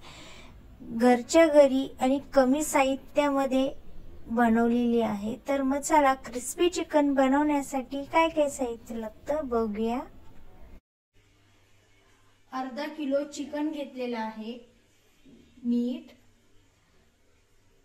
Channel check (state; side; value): identical; both; correlation 1.00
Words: घरच्या घरी आणि कमी साहित्यामध्ये बनवलेली आहे। तर मग चला क्रिस्पी चिकन बनवण्यासाठी काय काय साहित्य लागतं बघूया। अर्धा किलो चिकन घेतलेला आहे, मीठ,